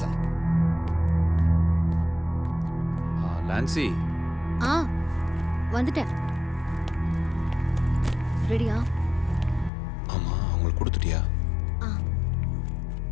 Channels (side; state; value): right; drops out; at 9.7 s